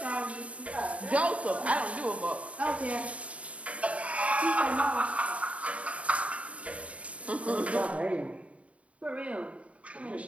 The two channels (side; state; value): left; late; 0.065 ms